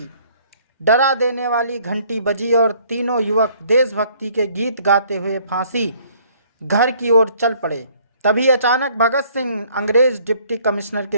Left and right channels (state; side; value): inverted; both; correlation -0.60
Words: डरा देने वाली घंटी बजी और तीनों युवक देशभक्ति के गीत गाते हुए फांसी घर की ओर चल पड़े। तभी अचानक भगत सिंह अंग्रेज डिप्टी कमिश्नर